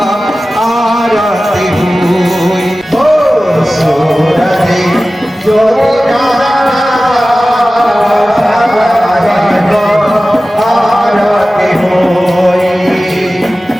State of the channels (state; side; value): normal; both; correlation 0.96